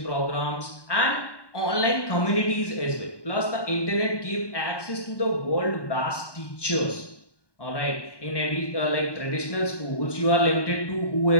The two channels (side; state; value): right; late; 1.2 ms